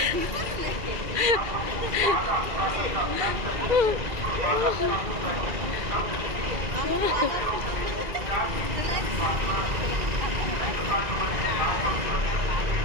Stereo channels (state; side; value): late; left; 2.4 ms